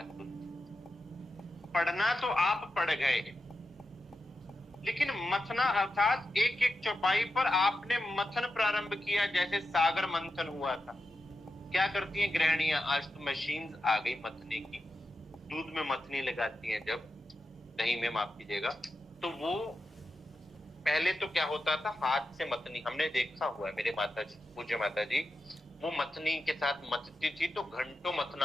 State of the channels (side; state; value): both; normal; correlation 0.90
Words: होती। पढ़ना तो आप पढ़ गए, लेकिन मथना अर्थात एक एक चौपाई पर आपने मथन प्रारंभ किया, जैसे सागर मंथन हुआ था। क्या करती हैं गृहिणियां, आज तो मशीन आ गई मथने की, दूध में मथनी लगाती हैं, जब दही में माफ कीजिएगा, तो वो पहले तो क्या होता था, हाथ से मथनी, हमने देखा हुआ है, मेरे माता जी, पूज्य माता जी, वो मथनी के साथ मथती थी तो घंटों मथना